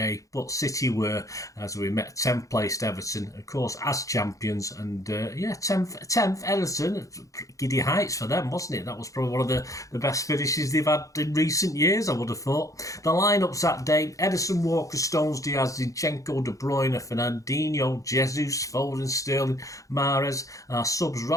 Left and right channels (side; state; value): right; late; 0.16 ms